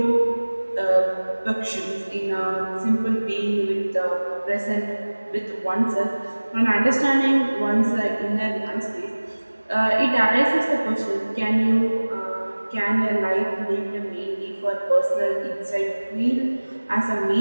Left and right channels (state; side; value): inverted; both; correlation -1.00